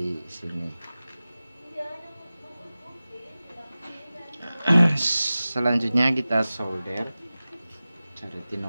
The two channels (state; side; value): inverted; both; correlation -0.97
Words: sini. Selanjutnya kita solder, cari